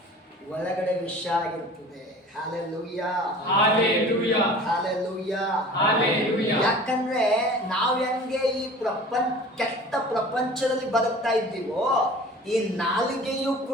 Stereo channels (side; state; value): both; normal; correlation 0.43